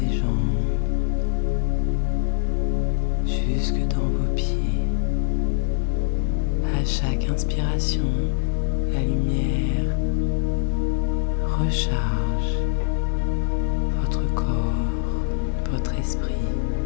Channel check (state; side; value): silent; right; 59 dB below the other